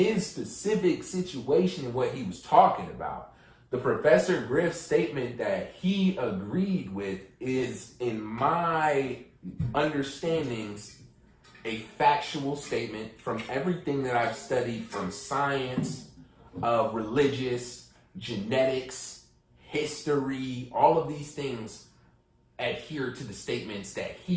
specific situation and what he was talking about, the Professor Griff statement that he agreed with is, in my understandings, a factual statement from everything that I've studied, from science, religious, genetics, history. All of these things adhere to the statements that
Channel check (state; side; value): identical; both; correlation 1.00